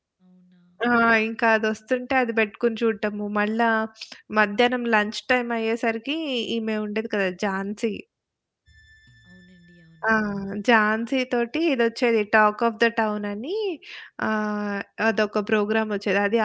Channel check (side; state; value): both; identical; correlation 1.00